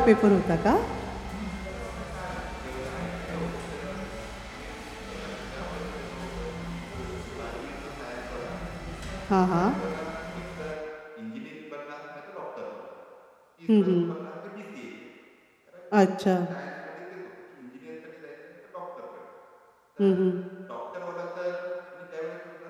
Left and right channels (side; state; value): both; identical; correlation 1.00